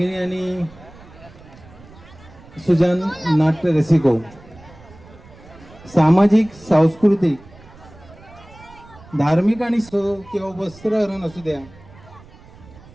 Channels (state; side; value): noise; right; rumble, 22 dB below the sound